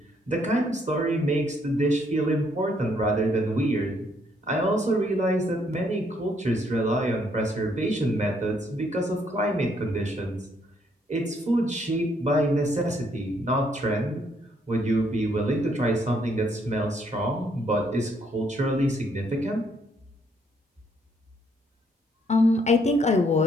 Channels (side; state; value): both; normal; correlation 0.70